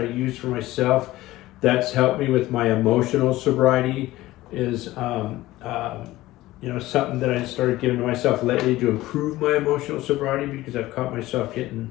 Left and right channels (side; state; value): right; quieter; 17.1 dB